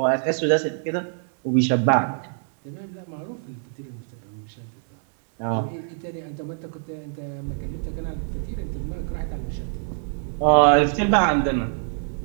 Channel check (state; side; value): silent; left; 61 dB below the other